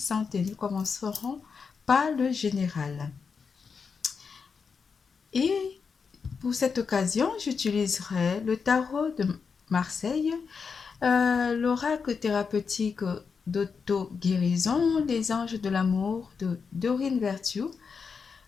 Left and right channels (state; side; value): quieter; right; 5.6 dB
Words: Nous commencerons par le général. Et pour cette occasion, j'utiliserai le tarot de Marseille, l'oracle thérapeutique d'auto-guérison, les anges de l'amour de Dorine Vertu,